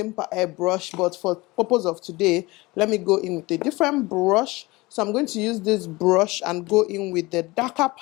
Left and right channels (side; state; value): right; quieter; 22.0 dB